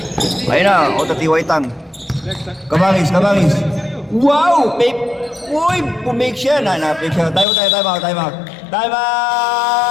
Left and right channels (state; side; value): drops out; right; at 7.5 s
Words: Ayun na, o TY Tang. Kabangis. Wow! Uy, pumake siya. Napake siya. Time out. Time